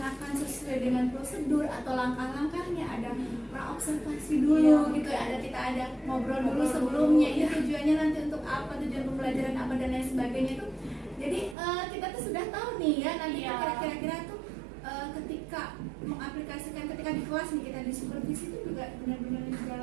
sesuai dengan prosedur atau langkah-langkahnya, ada praobservasi dulu gitu ya, kita ada ngobrol dulu sebelumnya ini tujuannya nanti untuk apa, tujuan pembelajaran apa dan lain sebagainya itu. Jadi kita tuh sudah tahu nih ya nanti kira-kira tuh ketika mengaplikasikan, ketika di kelas nih kita disupervisi itu juga benar-benar di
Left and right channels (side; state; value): left; drops out; at 11.6 s